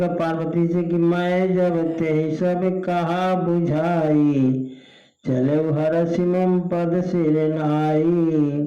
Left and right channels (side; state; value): both; identical; correlation 1.00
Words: पार्वती से कि मैं जब ते सब कहा बुझाई, चले हरसि मम पद सिर नाई।